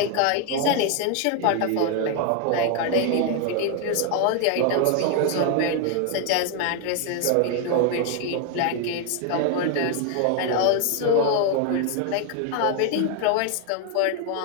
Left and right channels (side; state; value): both; different; correlation 0.01